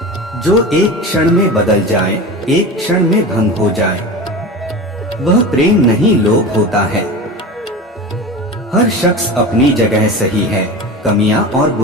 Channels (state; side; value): normal; both; correlation 0.30